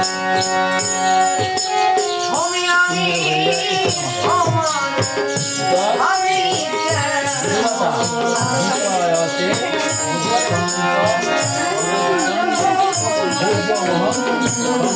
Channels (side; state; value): both; identical; correlation 1.00